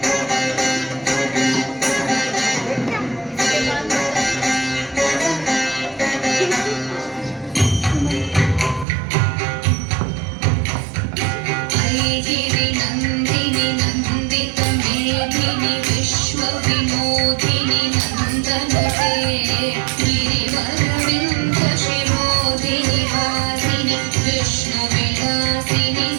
ऐगिरि नन्दिनि नन्दित मेधिनि विश्वविनोदिनि नन्दनुते गिरिवरविन्द शिरोधिनि हासिनि विष्णुविलासिनि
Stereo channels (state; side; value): drops out; left; at 8.8 s